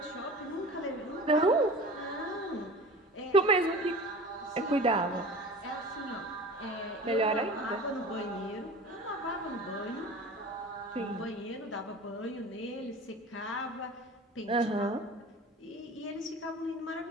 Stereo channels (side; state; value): both; normal; correlation 0.38